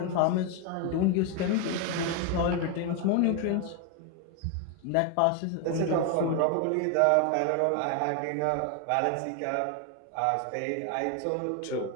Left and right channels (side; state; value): both; different; correlation 0.01